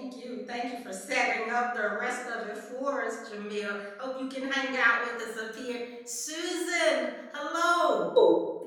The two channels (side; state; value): both; identical; correlation 1.00